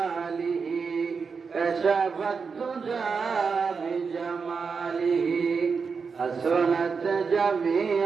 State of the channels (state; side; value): quieter; left; 5.3 dB